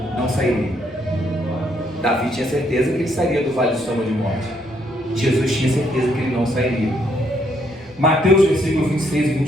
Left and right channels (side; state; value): both; normal; correlation 0.72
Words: sairia. Davi tinha certeza que ele sairia do vale de sombra de morte. Jesus tinha certeza que ele não sairia. Mateus, versículo 26 e